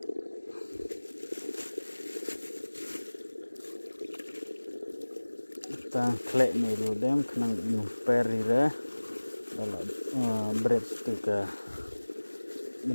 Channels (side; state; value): both; inverted; correlation -1.00